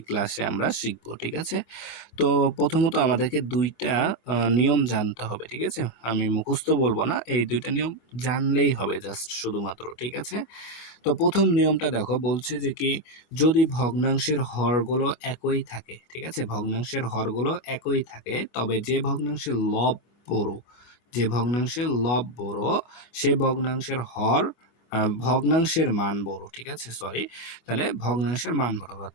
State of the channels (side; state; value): right; late; 25 ms